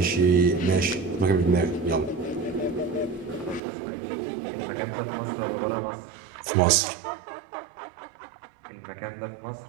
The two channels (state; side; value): drops out; left; at 3.6 s